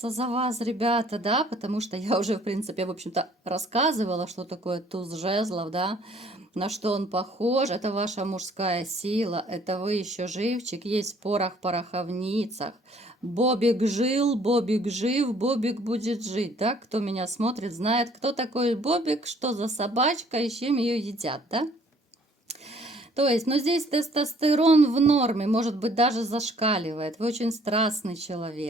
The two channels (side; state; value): both; normal; correlation 0.59